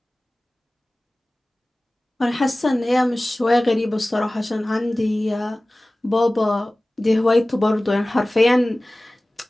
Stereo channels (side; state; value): both; normal; correlation 0.98